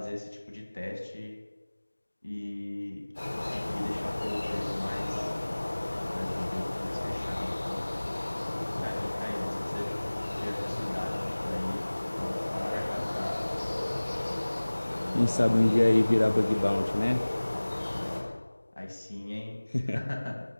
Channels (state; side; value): inverted; both; correlation -1.00